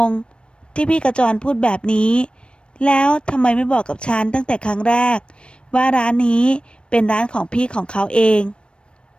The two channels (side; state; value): right; late; 0.057 ms